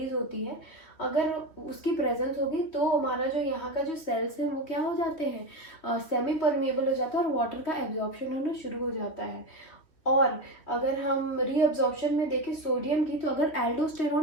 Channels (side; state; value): right; late; 3.1 ms